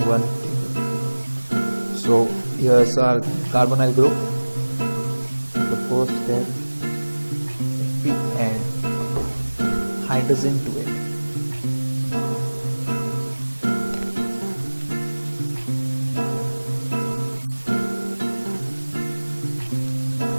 one table. So here's our carbonyl group. The first step, if we add hydrogen to it,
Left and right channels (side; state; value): both; inverted; correlation -1.00